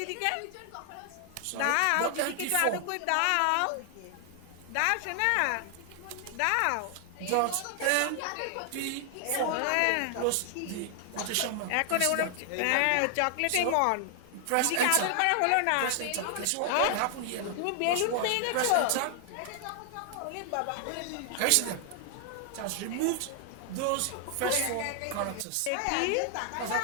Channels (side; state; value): both; different; correlation 0.00